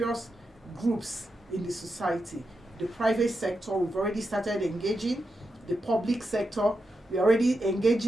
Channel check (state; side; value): normal; both; correlation 0.87